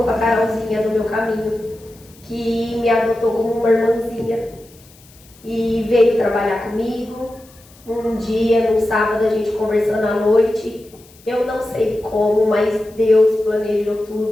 a Carolzinha no meu caminho, que me adotou como uma irmãzinha e veio trabalhar comigo. Um dia, num sábado, a gente conversando à noite, eu não sei como, mas Deus planejou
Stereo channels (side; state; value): left; noise; hiss, 26 dB below the sound